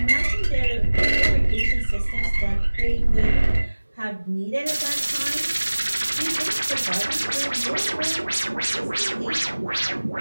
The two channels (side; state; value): both; inverted; correlation -1.00